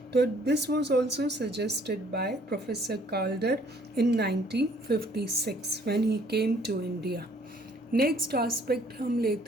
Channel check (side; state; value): both; normal; correlation 0.60